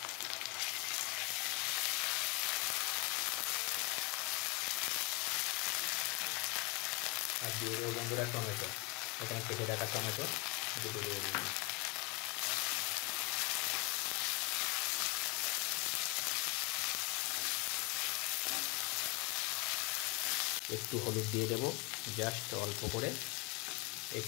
আর দিয়ে দেবো বন্ধুরা টমেটো, এখানে কেটে রাখা টমেটো দিয়ে দেবো। একটু হলুদ দিয়ে দেবো, জাস্ট অল্প করে।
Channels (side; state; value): right; quieter; 22.3 dB